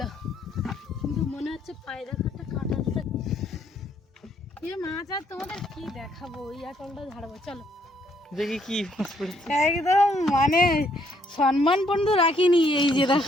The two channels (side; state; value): both; normal; correlation 0.69